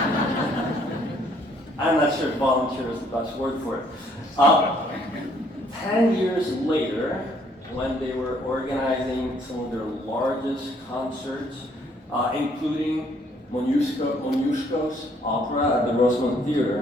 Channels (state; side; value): normal; both; correlation 0.65